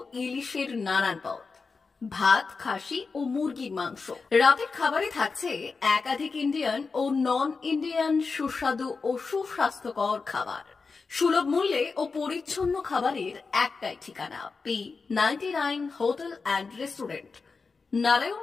ইলিশের নানান পদ, ভাত, খাসি ও মুরগির মাংস। রাতের খাবারে থাকছে একাধিক ইন্ডিয়ান ও নন ইন্ডিয়ান সুস্বাদু ও সুস্বাস্থ্যকর খাবার। সুলভ মূল্যে ও পরিচ্ছন্ন খাবারের একটাই ঠিকানা, P99 hotel and restaurant,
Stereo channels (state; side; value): quieter; right; 4.5 dB